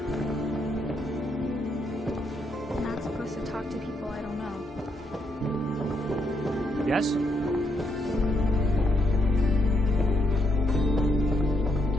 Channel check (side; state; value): both; normal; correlation 0.78